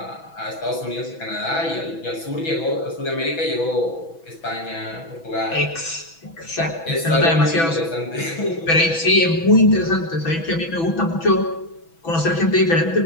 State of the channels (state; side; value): late; right; 6.1 ms